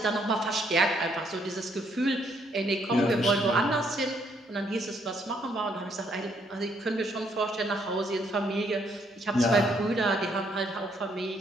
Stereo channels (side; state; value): both; normal; correlation 0.70